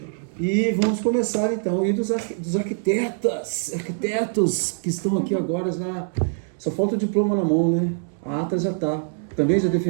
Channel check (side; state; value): left; silent; digital silence